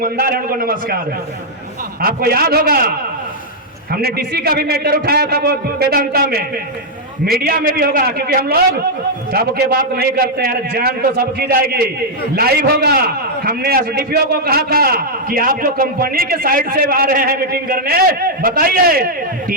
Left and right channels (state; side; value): normal; both; correlation -0.04